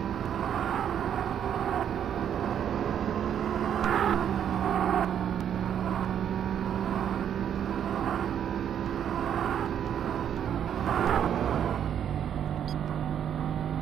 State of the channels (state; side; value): quieter; left; 9.2 dB